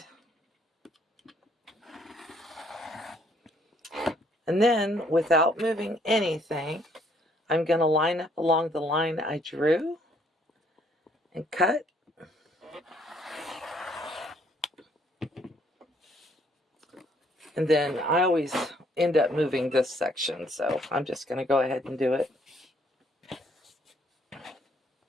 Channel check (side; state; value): both; normal; correlation 0.65